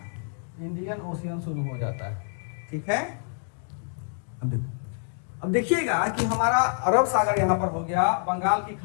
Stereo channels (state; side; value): silent; right; 57 dB below the other